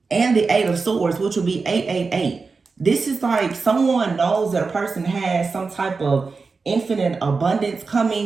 And the Eight of Swords, which will be 888. This is like someone knows that a person has some type of infinite abundance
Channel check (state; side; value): quieter; left; 4.5 dB